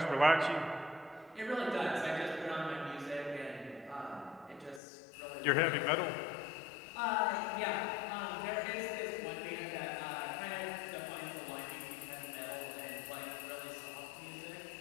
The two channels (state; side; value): drops out; right; at 4.8 s